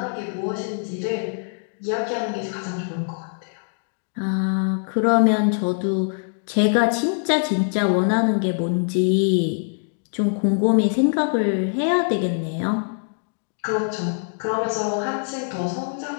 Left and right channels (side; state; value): right; silent; 63 dB below the other